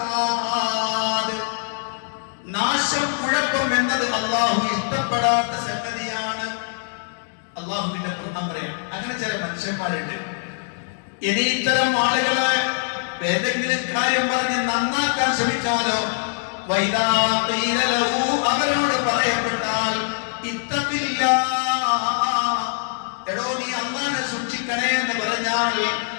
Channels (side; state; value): right; silent; digital silence